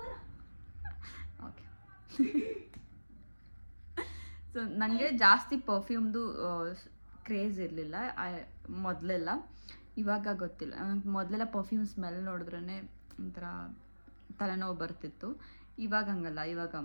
ಓಕೆ. ಸೊ ನನಗೆ ಜಾಸ್ತಿ ಪರ್ಫ್ಯೂಮ್ದು ಕ್ರೇಜ್ ಇರಲಿಲ್ಲ ಮೊದಲೆಲ್ಲ. ಇವಾಗ ಗೊತ್ತಿಲ್ಲ, ನನಗೆ ಮೊದಲೆಲ್ಲ ಪರ್ಫ್ಯೂಮ್ ಸ್ಮೆಲ್ ನೋಡಿದ್ರೇ ಒಂಥರ ತಲೆನೋವು ಬರ್ತಿತ್ತು. ಇವಾಗ ಹಂಗಲ್ಲ,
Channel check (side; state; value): both; inverted; correlation -1.00